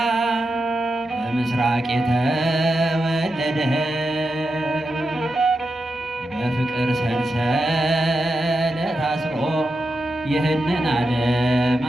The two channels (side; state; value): both; normal; correlation 0.88